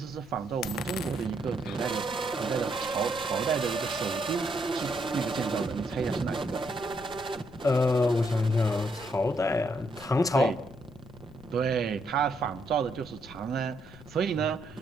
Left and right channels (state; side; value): noise; left; rumble, 19 dB below the sound